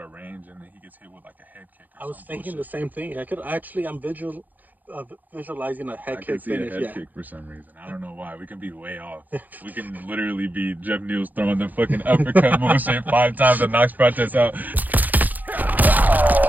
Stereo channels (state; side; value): late; left; 0.083 ms